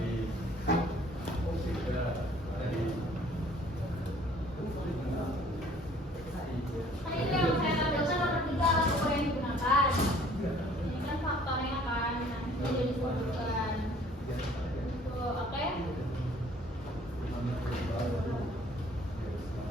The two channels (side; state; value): both; normal; correlation 0.56